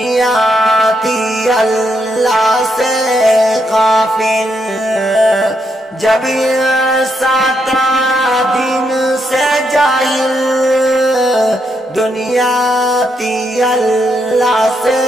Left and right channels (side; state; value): both; normal; correlation 0.79